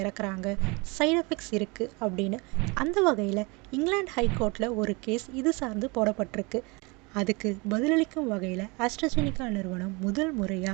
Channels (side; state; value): left; quieter; 27.5 dB